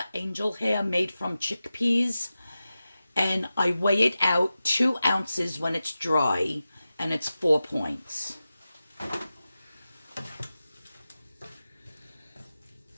angel hair made from chickpeas, and I weigh it out 2 ounces when it's dry, and it's 4 points.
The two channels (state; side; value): inverted; both; correlation -0.94